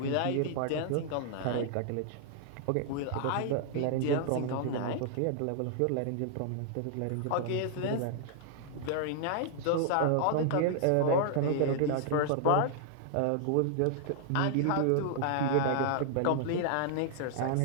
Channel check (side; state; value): both; different; correlation -0.01